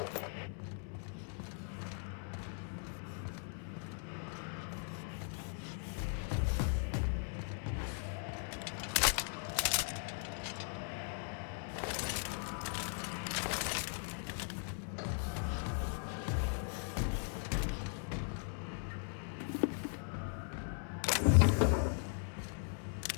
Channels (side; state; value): right; silent; 52 dB below the other